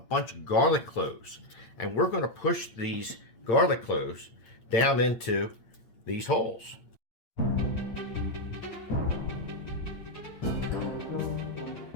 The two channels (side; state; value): right; late; 8.9 ms